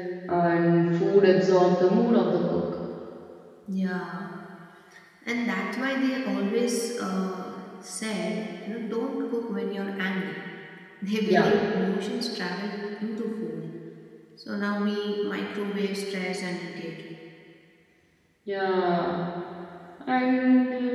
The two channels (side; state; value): both; identical; correlation 1.00